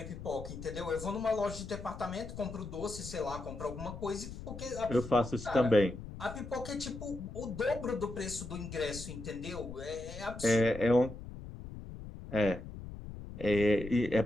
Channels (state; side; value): noise; left; rumble, 11 dB below the sound